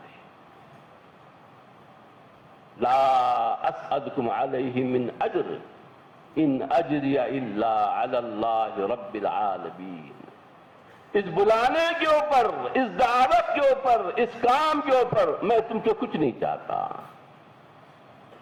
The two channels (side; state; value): both; identical; correlation 1.00